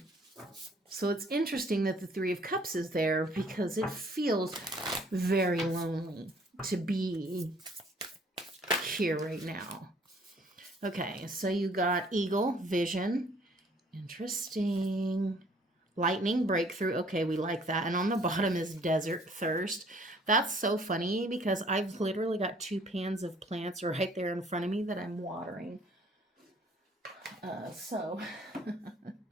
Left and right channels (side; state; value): both; normal; correlation 0.58